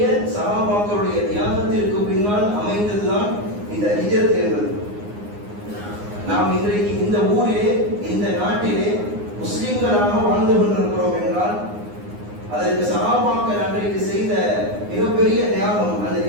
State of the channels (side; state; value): left; late; 9.7 ms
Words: சஹாபாக்களுடைய தியாகத்திற்கு பின்னால் அமைந்ததுதான் இந்த ஹிஜ்ரத் என்பது. நாம் இன்றைக்கு இந்த ஊரிலே இந்த நாட்டிலே முஸ்லிம்களாக வாழ்ந்து கொண்டிருக்கிறோம் என்றால் அதற்கு சஹாபாக்கள் அன்றைக்கு செய்த மிகப்பெரிய தியாகம், அந்த